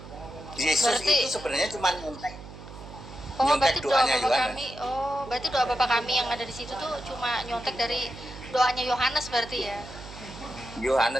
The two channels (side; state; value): right; noise; hum, 15 dB below the sound